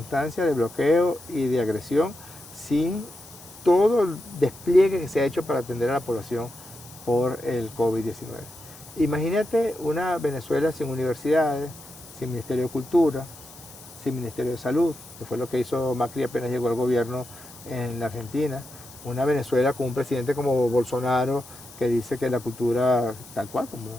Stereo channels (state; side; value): noise; left; hiss, 19 dB below the sound